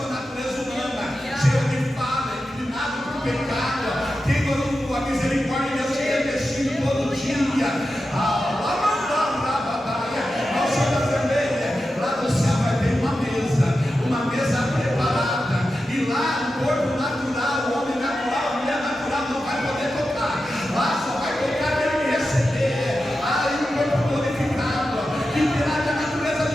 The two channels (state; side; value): normal; both; correlation 0.91